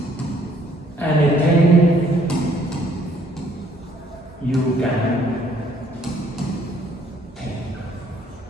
Anything you can think.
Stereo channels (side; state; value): both; normal; correlation 0.64